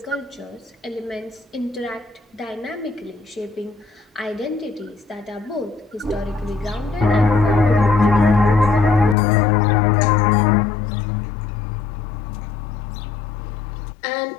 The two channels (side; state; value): right; drops out; at 9.2 s